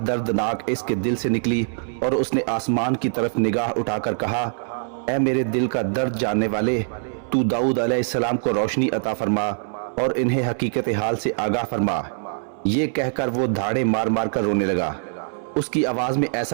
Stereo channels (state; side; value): silent; left; 63 dB below the other